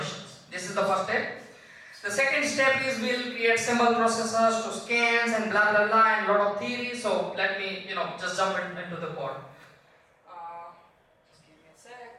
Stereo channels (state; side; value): identical; both; correlation 1.00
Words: This is the first step. The second step is we'll create symbol processors to scans and blah blah blah and lot of theory. So let me just jump into the code. Just give me a